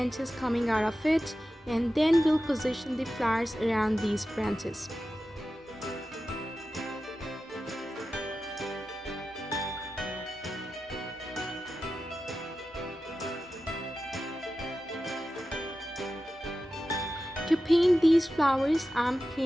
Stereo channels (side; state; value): both; normal; correlation 0.93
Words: coming out of it, and then we'll position the flowers around these branches. To paint these flowers, I'm